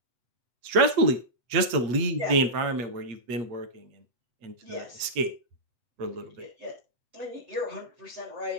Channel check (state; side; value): late; left; 8.6 ms